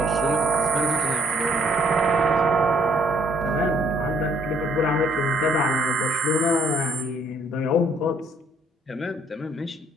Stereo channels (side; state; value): both; normal; correlation 0.65